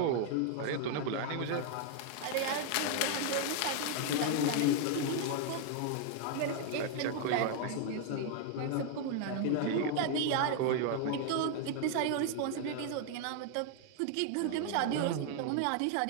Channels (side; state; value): both; different; correlation 0.00